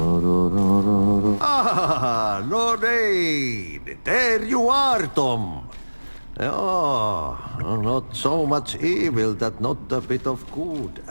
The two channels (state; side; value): inverted; both; correlation -1.00